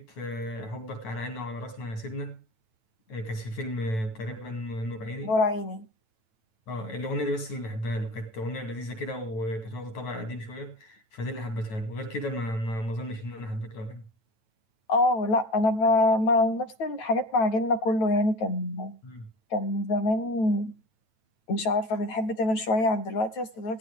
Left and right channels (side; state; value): right; late; 9.1 ms